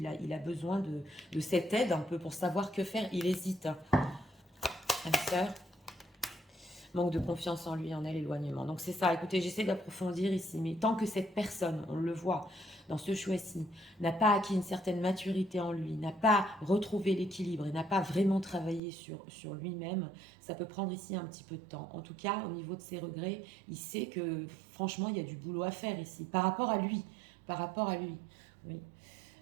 il a besoin de cette aide un peu pour savoir que faire, il hésite. Âme sœur. Manque de confiance en lui, en elle, éloignement. Donc c'est ça, écoutez, j'essaie d'approfondir ici, mais tant que cette personne, on le voit dans ce choix-ci, n'a pas acquis une certaine maturité en lui, n'a pas retrouvé l'équilibre et n'a pas vraiment travaillé sur lui-même, ça peut prendre ici un petit peu de temps. En tout cas, au niveau de ses regrets, il sait que franchement, il y a du boulot à faire ici, par rapport à lui, par rapport à lui. Oui.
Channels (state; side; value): drops out; left; at 18.8 s